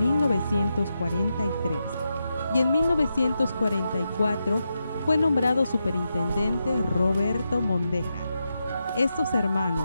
y en 1944 fue nombrado superintendente Roberto Mondeja. Estos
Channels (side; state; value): both; inverted; correlation -0.87